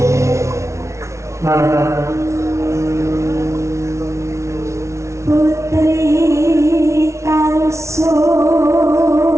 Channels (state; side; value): late; left; 0.14 ms